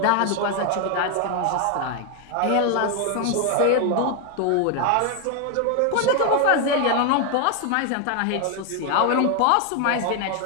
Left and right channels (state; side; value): different; both; correlation 0.01